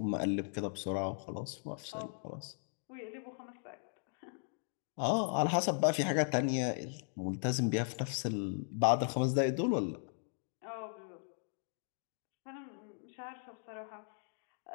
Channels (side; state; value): right; silent; digital silence